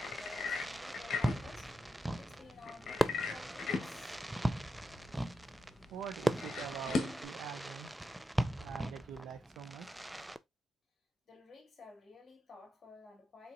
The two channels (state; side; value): normal; both; correlation 0.88